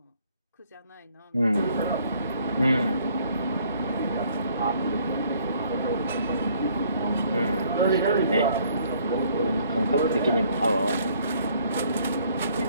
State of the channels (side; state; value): both; inverted; correlation -0.62